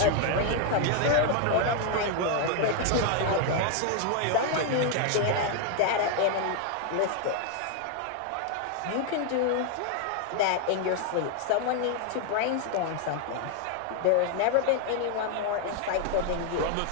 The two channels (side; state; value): both; different; correlation 0.00